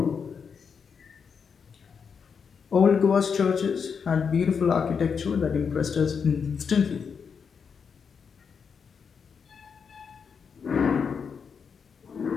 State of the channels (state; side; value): quieter; right; 6.3 dB